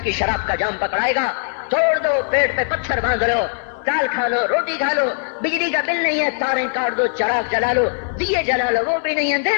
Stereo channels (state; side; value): silent; right; 66 dB below the other